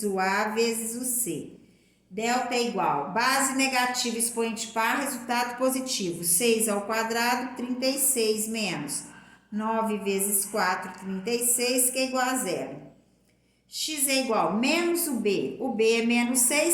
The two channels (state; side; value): identical; both; correlation 1.00